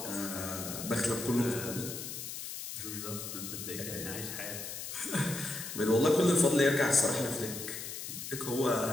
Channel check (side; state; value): left; noise; hiss, 7 dB below the sound